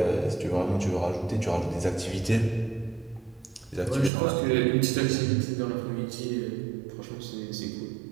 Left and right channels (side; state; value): left; drops out; at 4.1 s